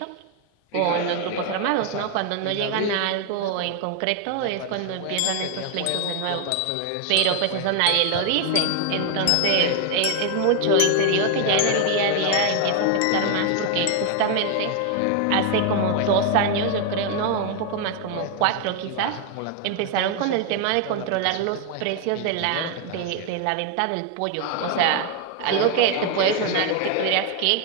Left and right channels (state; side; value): different; both; correlation 0.00